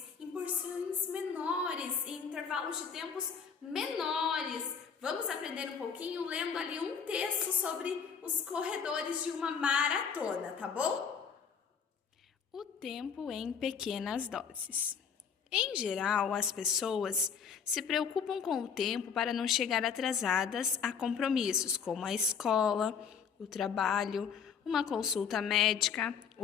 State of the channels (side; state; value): right; quieter; 6.7 dB